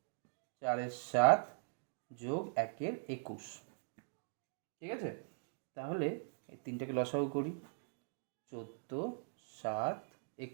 4-7 যোগ 1-21, ঠিক আছে? তাহলে এই 3টাকে লসাগু করি, 14, 7,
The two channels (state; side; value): silent; left; digital silence